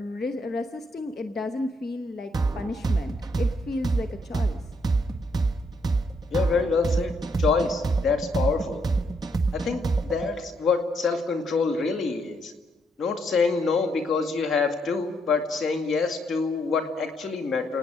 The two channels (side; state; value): both; normal; correlation 0.75